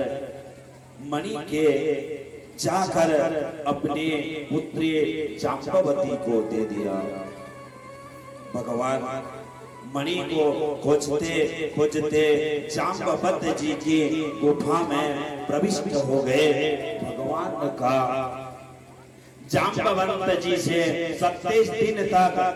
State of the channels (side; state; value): both; identical; correlation 1.00